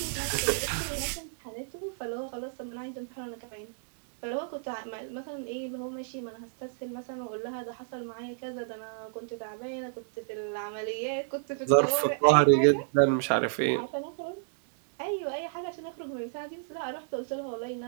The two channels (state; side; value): silent; left; digital silence